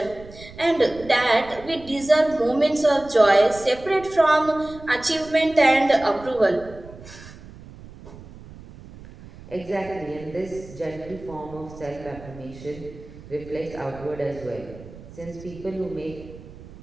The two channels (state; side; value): noise; right; rumble, 18 dB below the sound